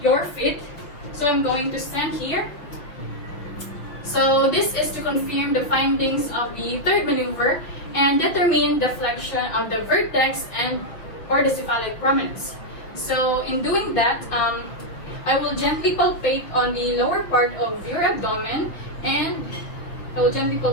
your feet. So I'm going to stand here. So this is to confirm the findings of the third maneuver and determine the flexion of the vertex and or the cephalic prominence. So in doing that, I will gently palpate on the lower part of your abdomen and I will gently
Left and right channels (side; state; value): right; late; 5.8 ms